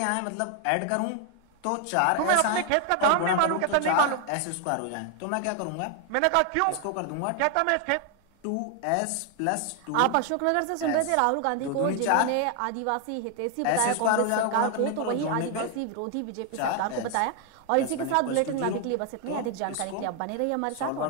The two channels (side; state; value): both; different; correlation 0.01